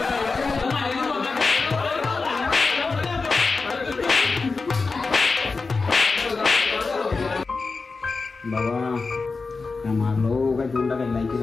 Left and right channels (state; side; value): quieter; right; 4.2 dB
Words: बाबा काय मारलो काय तोंडा काय लायकी